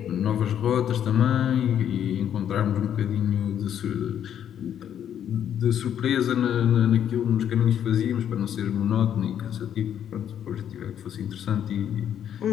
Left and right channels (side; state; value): right; quieter; 9.6 dB